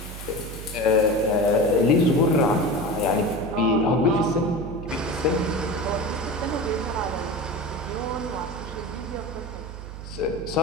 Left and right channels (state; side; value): noise; right; hum, 11 dB below the sound